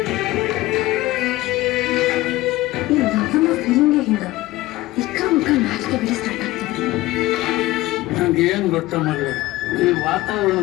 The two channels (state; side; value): quieter; right; 18.1 dB